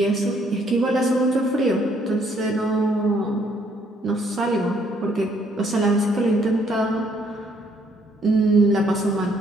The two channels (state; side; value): normal; both; correlation 0.67